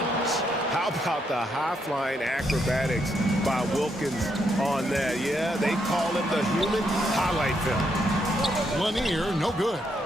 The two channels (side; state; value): both; normal; correlation 0.77